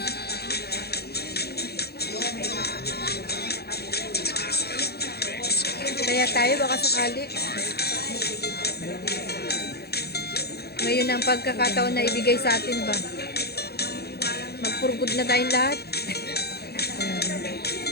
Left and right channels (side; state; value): right; late; 0.46 ms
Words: Kaya tayo, baka sakali. Ngayon ang pagkakataon na ibigay sa atin ba? Magpurgod na tayong lahat.